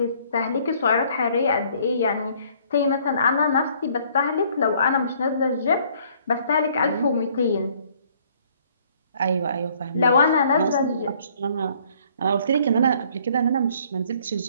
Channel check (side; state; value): both; inverted; correlation -0.61